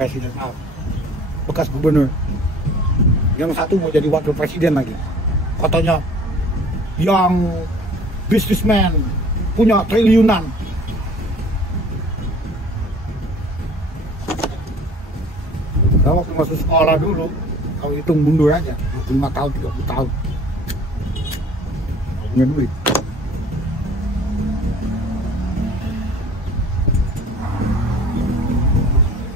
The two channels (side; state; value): both; normal; correlation 0.49